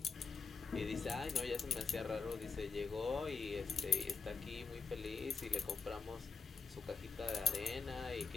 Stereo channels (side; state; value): right; quieter; 5.5 dB